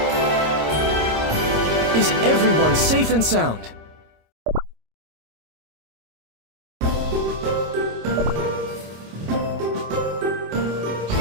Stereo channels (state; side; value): late; left; 26 ms